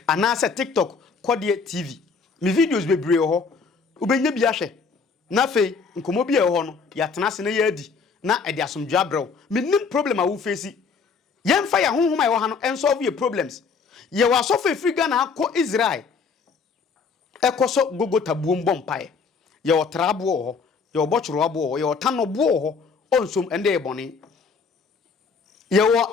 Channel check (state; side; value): quieter; right; 5.2 dB